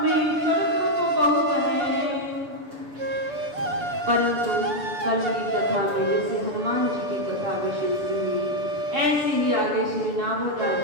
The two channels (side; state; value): left; late; 6.9 ms